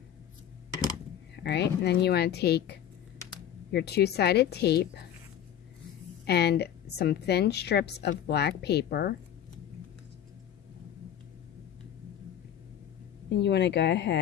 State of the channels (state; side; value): quieter; right; 10.2 dB